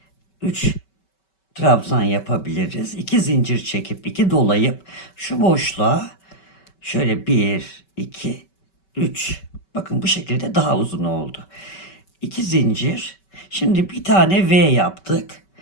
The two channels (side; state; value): right; late; 5.2 ms